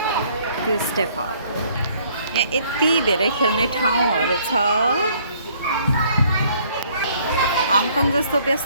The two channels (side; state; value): both; inverted; correlation -0.61